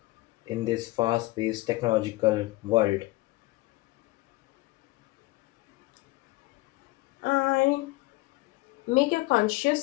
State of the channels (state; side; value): quieter; right; 20.6 dB